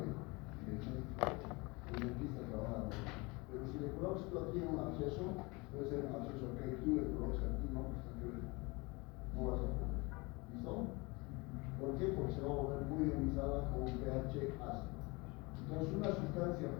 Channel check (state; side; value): quieter; right; 26.0 dB